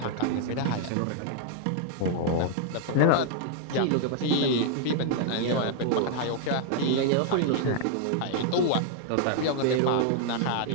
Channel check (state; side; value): different; both; correlation 0.00